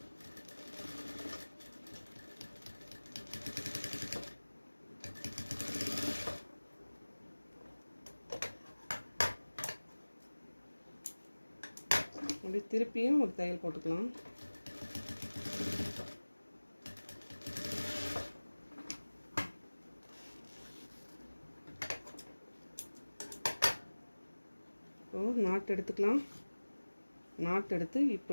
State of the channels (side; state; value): both; inverted; correlation -1.00